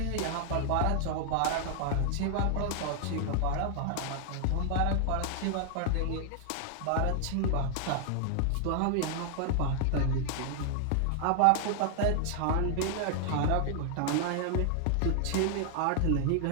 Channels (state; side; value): different; both; correlation 0.00